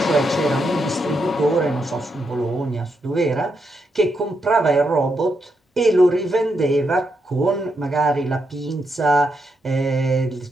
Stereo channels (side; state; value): both; normal; correlation 0.81